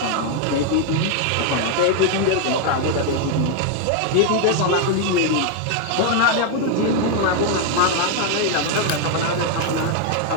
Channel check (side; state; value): both; different; correlation 0.00